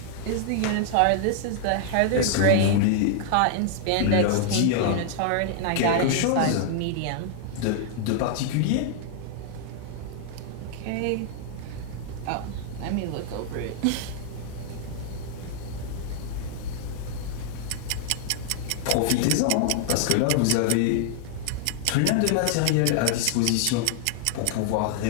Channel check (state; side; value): different; both; correlation -0.01